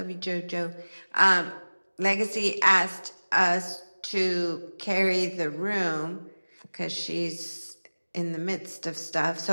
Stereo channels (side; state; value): both; inverted; correlation -1.00